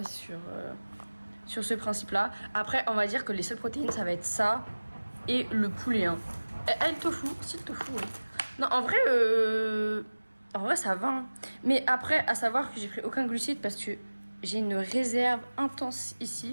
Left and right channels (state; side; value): inverted; both; correlation -1.00